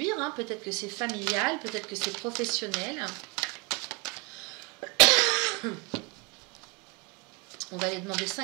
hein. Peut-être que c'est familial, peut-être que c'est professionnel. On va aller demander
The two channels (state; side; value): quieter; left; 28.0 dB